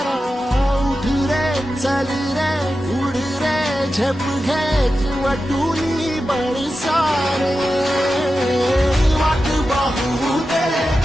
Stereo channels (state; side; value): normal; both; correlation 0.92